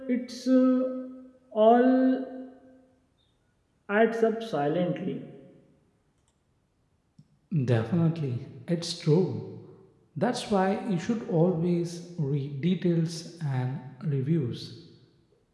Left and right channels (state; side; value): identical; both; correlation 1.00